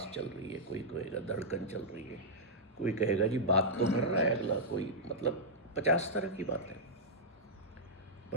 चल रही है, कोई कहेगा धड़कन चल रही है, कोई कहेगा जी बात तो कर रहा है अगला, कोई मतलब 50 तरह की बातें।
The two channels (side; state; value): both; normal; correlation -0.08